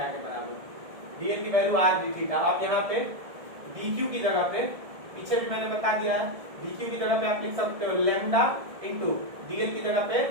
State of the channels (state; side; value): late; left; 1.6 ms